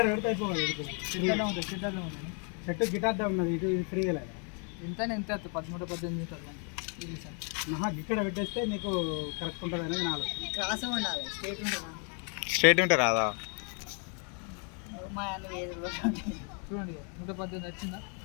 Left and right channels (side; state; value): right; quieter; 39.1 dB